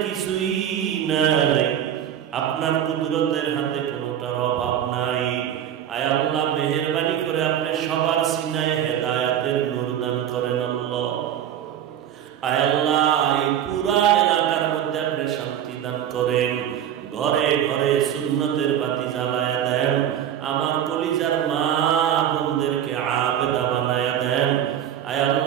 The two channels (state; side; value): quieter; left; 10.2 dB